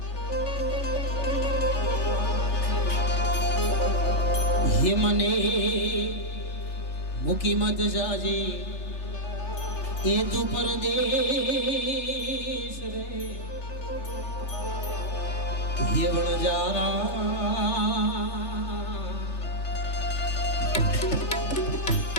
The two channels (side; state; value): right; late; 3.4 ms